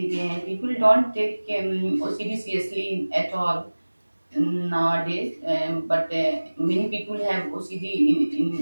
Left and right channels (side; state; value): both; inverted; correlation -1.00